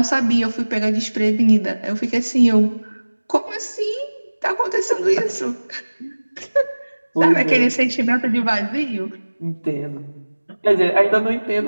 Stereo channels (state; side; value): inverted; both; correlation -1.00